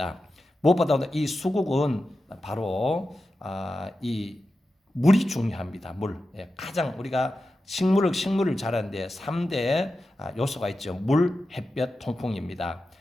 무엇보다도 이 수국은 바로 이 물이 중요합니다. 물. 가장 우리가 식물을 자라는데 3대 요소가 있죠. 물, 햇볕, 통풍입니다.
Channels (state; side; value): normal; both; correlation 0.92